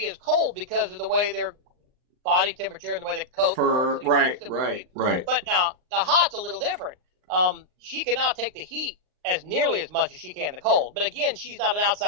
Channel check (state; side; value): late; left; 39 ms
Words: as cold because of the way their body temperature and the way the coat works. Right. But now, the hot's a little different. She cannot take the heat as nearly as much as she can the cold. But again, she's not an